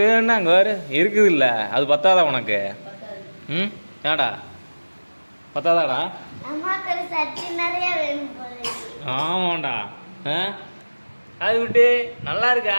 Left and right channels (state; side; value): inverted; both; correlation -1.00